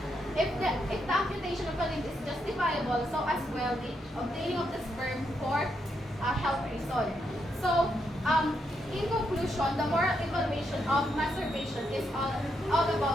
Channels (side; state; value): both; normal; correlation 0.80